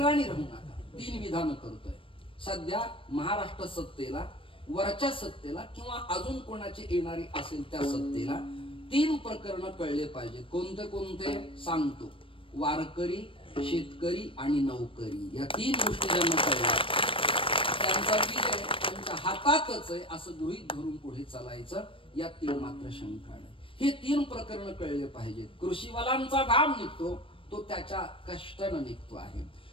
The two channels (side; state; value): right; late; 0.25 ms